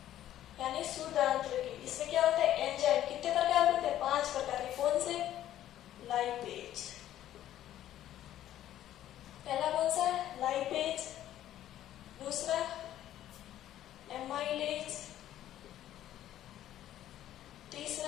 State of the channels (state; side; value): quieter; right; 12.4 dB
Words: यानी शुद्ध आंत्र की। इसमें क्या होता है, एंजाइम। कितने प्रकार होते हैं, 5 प्रकार के। कौन से, लाइपेज। पहला कौन सा है, लाइपेज। दूसरा एमाइलेज।